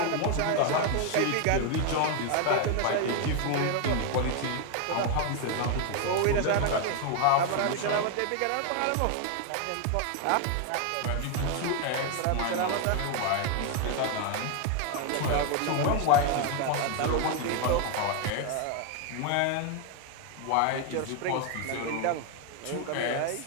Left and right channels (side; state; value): both; different; correlation 0.01